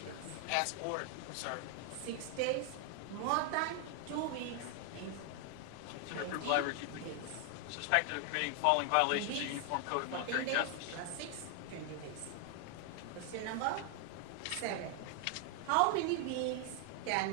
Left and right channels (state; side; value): different; both; correlation 0.00